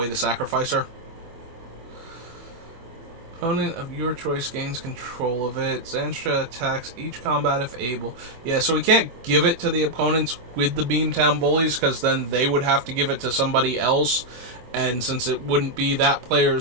to sacrifice her. Opponent of your choice gains control of it. Zanstra attacks each combat if able. Yeah, so we can't give it to the opponents with the Beamtown Bullies, because then they would have to give it to somebody else, and since it wouldn't be that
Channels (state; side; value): late; left; 24 ms